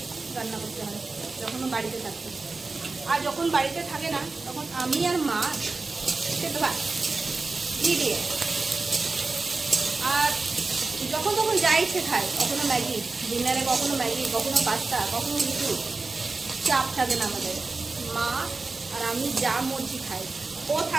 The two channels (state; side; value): quieter; left; 3.7 dB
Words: রান্না করতে হয় যখনও বাড়িতে থাকতে, আর যখন বাড়িতে থাকে না তখন আমি আর মা খেতে পারি দিয়ে, আর যখন তখন যা ইচ্ছে খায়, কখনো ম্যাগি ডিনারে, কখনো ম্যাগি, কখনো পাস্তা, কখনো কিছু, চাপ থাকে না আমাদের, মা আর আমি যা মর্জি খাই, ও